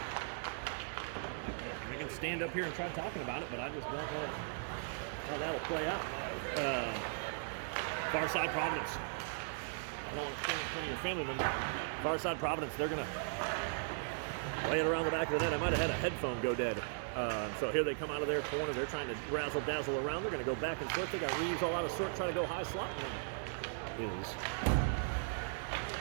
Stand up here and try talking about it, but I just don't know how that'll play out. Far Side Providence. I don't want to stand in front of your family member. Far Side Providence, they're going to lay it around the back of the net. I might have had a headphone go dead. So here they come out of their corner. They're trying to razzle-dazzle around. They're going to go back and forth. They got Reeves all out of sort, trying to go high slot. And is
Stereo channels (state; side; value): silent; left; digital silence